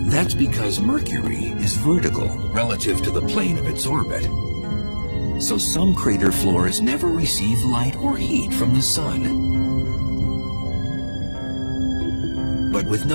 That's because Mercury is vertical relative to the plane of its orbit. So some crater floors never receive light or heat from the sun. But with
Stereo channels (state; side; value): inverted; both; correlation -1.00